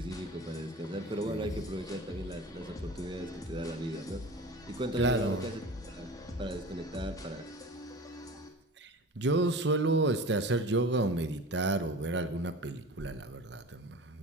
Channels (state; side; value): normal; both; correlation 0.36